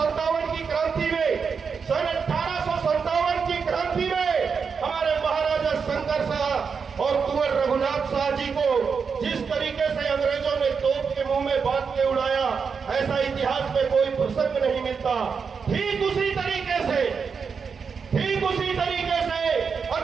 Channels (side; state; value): left; quieter; 5.8 dB